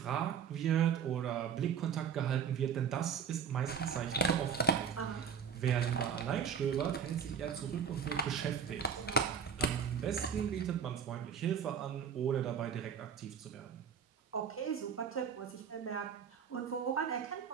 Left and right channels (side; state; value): left; quieter; 7.4 dB